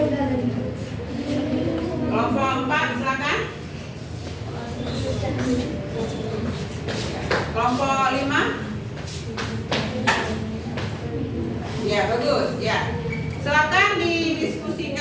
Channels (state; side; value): identical; both; correlation 1.00